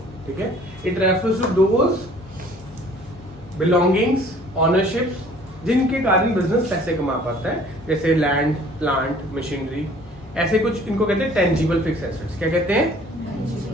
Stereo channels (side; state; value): both; normal; correlation 0.54